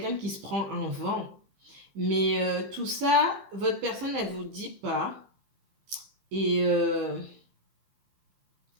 qui se prend un vent, mais tout ça, votre personne, elle vous dit pas. Et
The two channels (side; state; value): left; late; 15 ms